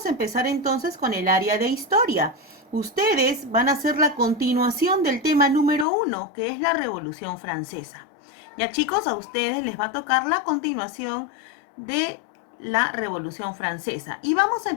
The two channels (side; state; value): right; drops out; at 5.9 s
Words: a empezar entonces con el área de historia. Ustedes van a hacer la continuación del tema número 1, que es la Revolución Francesa. Ya chicos, a ustedes les va a tocar la continuación de la Revolución Francesa. Y vamos a